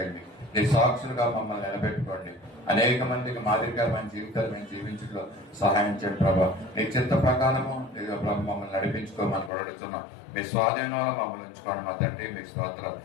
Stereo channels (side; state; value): right; drops out; at 9.5 s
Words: నీ సాక్షులుగా మమ్మల్ని నిలబెట్టుకోండి. అనేక మందికి మాదిరికరమైన జీవితాలు మేము జీవించడంలో సహాయం చేయండి ప్రభా. నీ చిత్త ప్రకారము మమ్మల్ని నడిపించుకోమని కూడా అడుగుతున్నాం. మీ స్వాధీనంలో మమ్మల్ని ఉంచుకోండి మా తండ్రి. మీ స్తోత్రాలు.